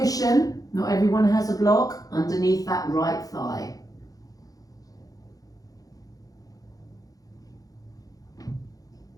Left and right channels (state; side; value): late; right; 0.17 ms